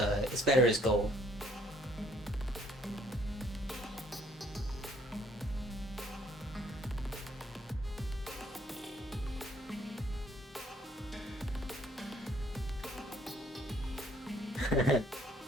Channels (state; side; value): normal; both; correlation 0.63